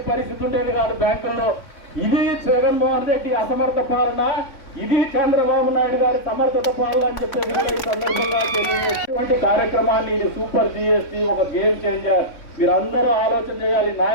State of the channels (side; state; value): right; late; 3.6 ms